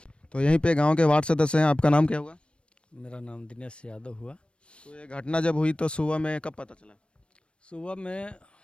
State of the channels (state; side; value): late; right; 0.058 ms